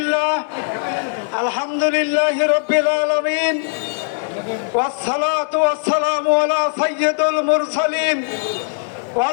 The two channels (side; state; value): right; silent; digital silence